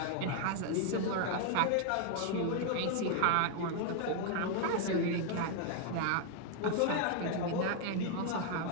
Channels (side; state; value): both; different; correlation 0.00